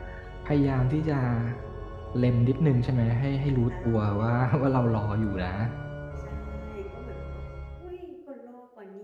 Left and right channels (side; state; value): both; identical; correlation 1.00